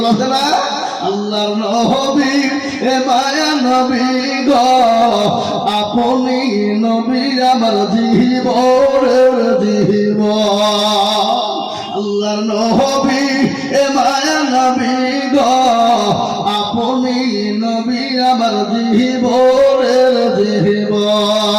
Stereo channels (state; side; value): identical; both; correlation 1.00